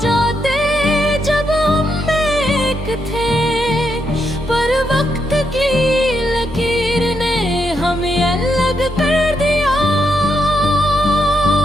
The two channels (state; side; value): normal; both; correlation 0.81